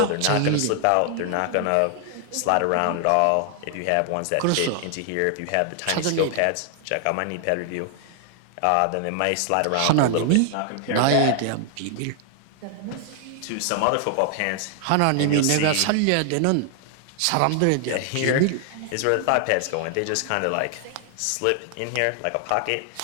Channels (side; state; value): both; different; correlation 0.00